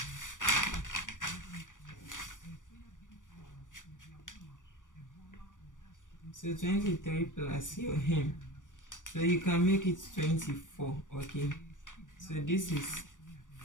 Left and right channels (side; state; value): right; late; 0.87 ms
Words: So 23 plus your hem. So you can make it 24. Okay. So this is